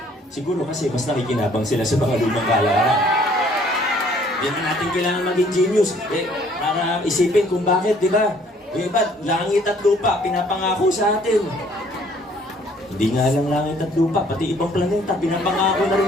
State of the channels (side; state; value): both; normal; correlation 0.60